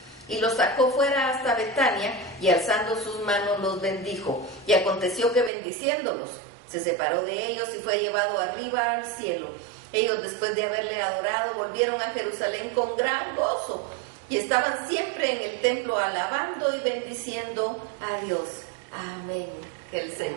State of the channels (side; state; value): left; drops out; at 5.5 s